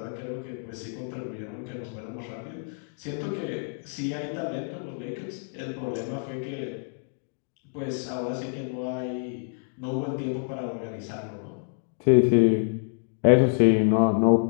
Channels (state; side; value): silent; right; 60 dB below the other